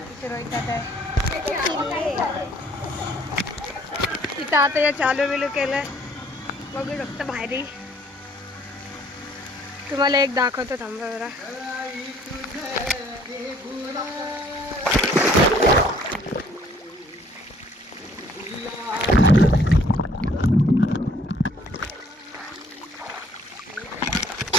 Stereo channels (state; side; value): normal; both; correlation 0.60